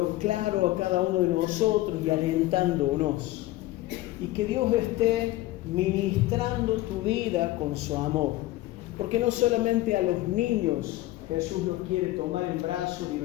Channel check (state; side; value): quieter; right; 17.0 dB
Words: claro a cada uno de nosotros y alentándonos. Y que Dios esté ministrando tu vida con su amor. Porque no solamente a los niños Jesús los quiere tomar en brazos y